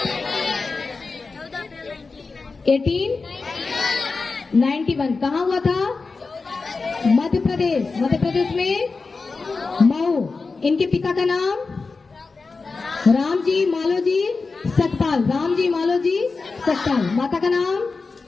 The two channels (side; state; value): right; quieter; 4.2 dB